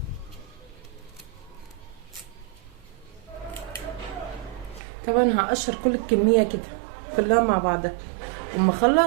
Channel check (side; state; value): left; drops out; at 4.8 s